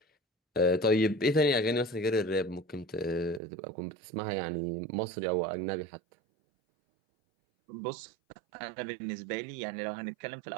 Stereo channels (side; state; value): left; drops out; at 3.4 s